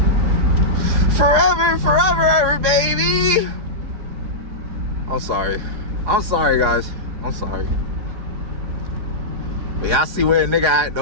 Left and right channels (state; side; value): late; left; 4.8 ms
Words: Forever, forever, ever, baby. I'm sorry. I'm sorry, guys. I'm sorry. But y'all see where a nigga at,